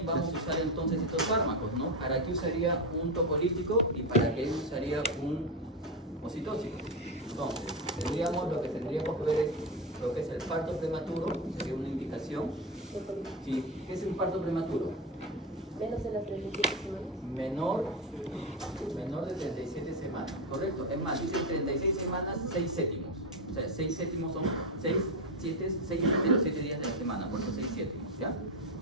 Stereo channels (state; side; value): normal; both; correlation 0.13